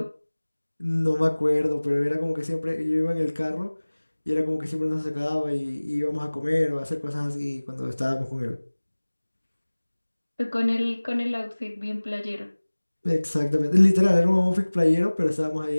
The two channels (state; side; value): inverted; both; correlation -1.00